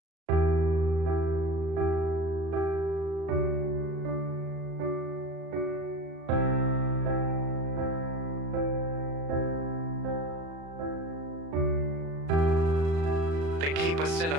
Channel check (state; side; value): late; left; 36 ms